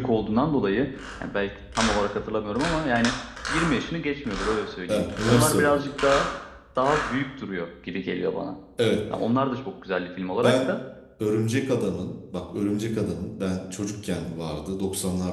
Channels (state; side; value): identical; both; correlation 1.00